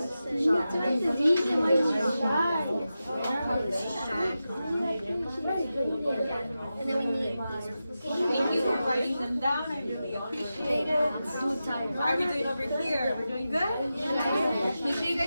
And then we need Thank you for writing them down. I really appreciate it. How are we doing over here? We're doing good? Make sure you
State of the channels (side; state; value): both; inverted; correlation -0.92